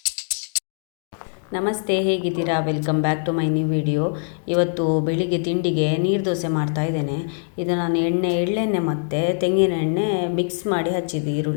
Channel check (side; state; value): right; silent; digital silence